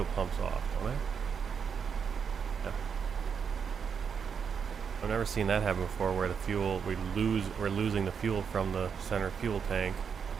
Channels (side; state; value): left; quieter; 6.7 dB